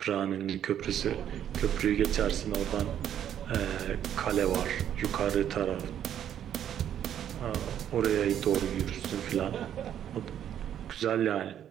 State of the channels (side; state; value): left; quieter; 10.1 dB